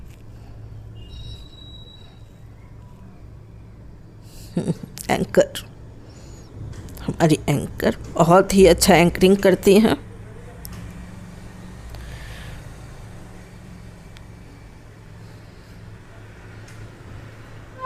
एंकर, हमारी एंकर बहुत ही अच्छा एंकरिंग करती हैं।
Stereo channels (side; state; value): both; identical; correlation 1.00